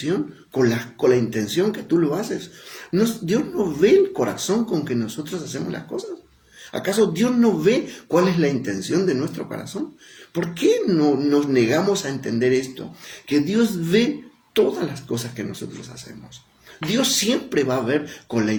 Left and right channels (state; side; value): identical; both; correlation 1.00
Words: con la intención que tú lo haces. Dios no ve el corazón con que nosotros hacemos las cosas. ¿Acaso Dios no ve cuál es la intención de nuestro corazón? ¿Por qué no nos negamos a entender esto? Que Dios ve todas las cosas que nosotros hacemos. Dios siempre va a ver con la